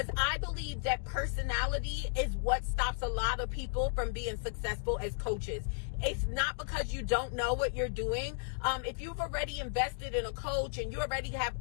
I believe that personality is what stops a lot of people from being successful as coaches. It's not because you don't know what you're doing. If you've already invested in a coach and you already have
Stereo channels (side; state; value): right; silent; digital silence